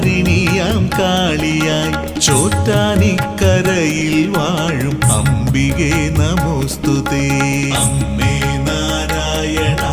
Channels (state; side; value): identical; both; correlation 1.00